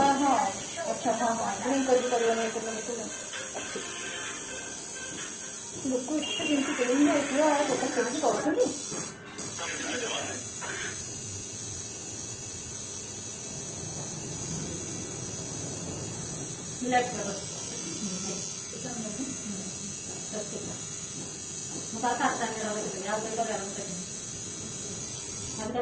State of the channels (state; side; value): identical; both; correlation 1.00